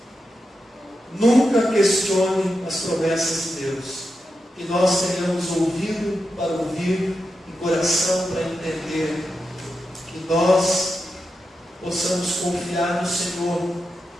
Nunca questione as promessas de Deus. Que nós tenhamos ouvido para ouvir e coração para entender. Que nós possamos confiar no Senhor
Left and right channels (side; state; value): both; normal; correlation 0.88